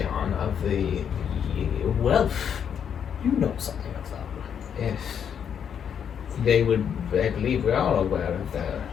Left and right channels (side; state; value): right; quieter; 8.1 dB